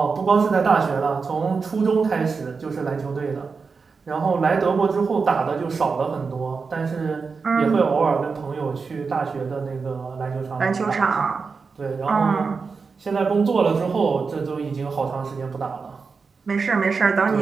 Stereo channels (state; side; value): quieter; left; 4.9 dB